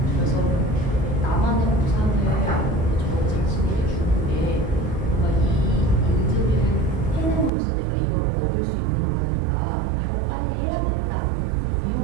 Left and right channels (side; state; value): left; drops out; at 7.5 s